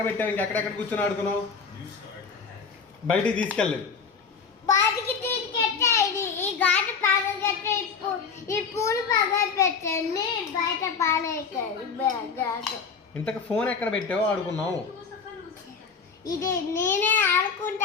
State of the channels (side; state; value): right; quieter; 5.6 dB